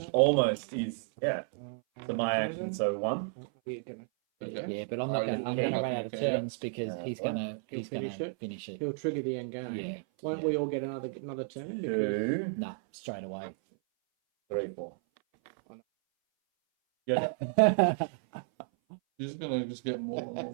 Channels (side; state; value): left; silent; 56 dB below the other